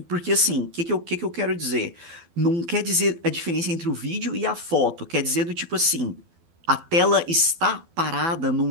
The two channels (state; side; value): late; left; 12 ms